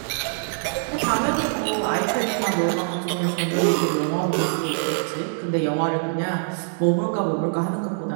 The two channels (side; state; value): left; silent; digital silence